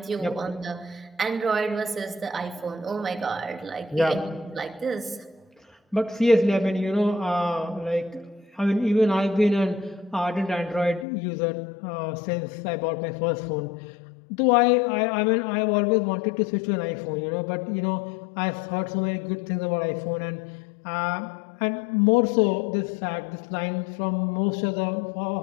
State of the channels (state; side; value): drops out; right; at 11.1 s